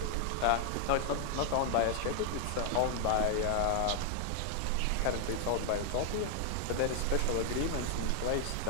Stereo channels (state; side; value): different; both; correlation 0.00